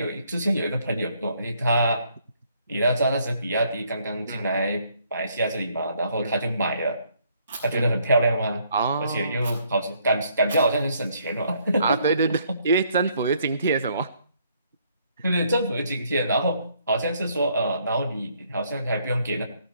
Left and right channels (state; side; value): inverted; both; correlation -0.68